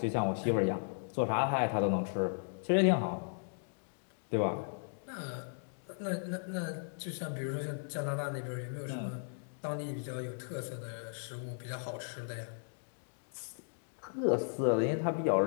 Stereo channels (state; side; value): silent; right; digital silence